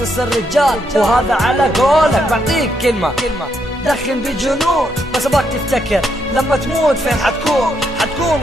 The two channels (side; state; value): both; normal; correlation 0.78